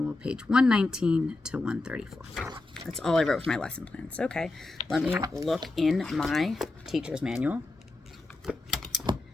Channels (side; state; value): right; quieter; 3.1 dB